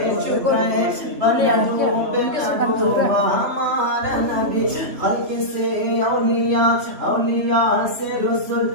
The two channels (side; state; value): left; late; 3.1 ms